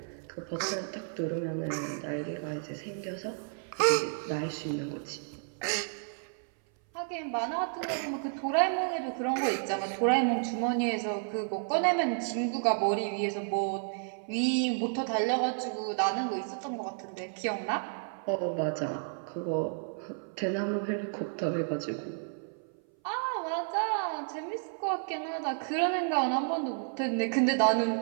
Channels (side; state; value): left; silent; 57 dB below the other